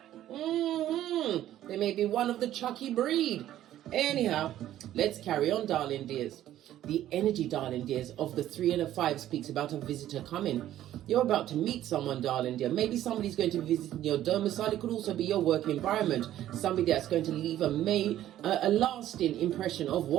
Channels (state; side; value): quieter; left; 12.7 dB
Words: They may be one of the Chucky breed. Anyhow, let's carry on, darling dears. The energy, darling dears, of the 3 and a 5 speaks about a visitor coming. You're about to meet someone, darling dear. Maybe somebody's going to visit your domicile. It could also be your work environment. Somebody that's going to leave a lasting impression of